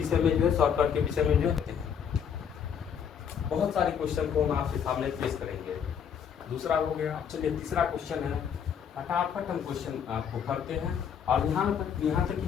में जो है शॉर्टकट के विषय में जो है बहुत सारे क्वेश्चन को हम आपके सामने पेश करेंगे। दूसरा हो गया। चलिए तीसरा क्वेश्चन है, फटाफट हम क्वेश्चन आपको करते हैं, और यहाँ तक कि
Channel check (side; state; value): right; quieter; 7.8 dB